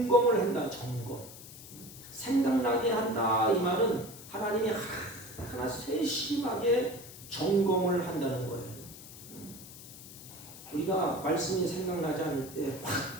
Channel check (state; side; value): noise; left; hiss, 16 dB below the sound